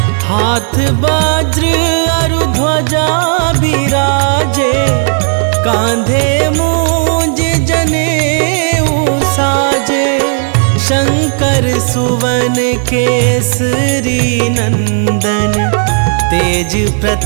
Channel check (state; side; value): silent; left; digital silence